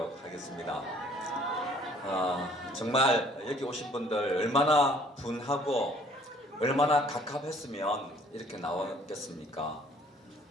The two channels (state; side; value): normal; both; correlation 0.58